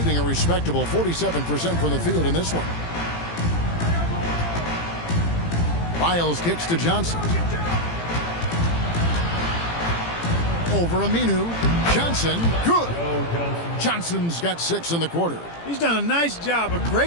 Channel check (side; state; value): right; late; 18 ms